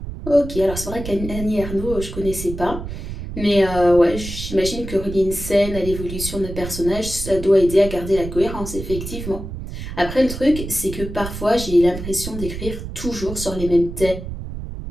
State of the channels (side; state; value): right; noise; rumble, 8 dB below the sound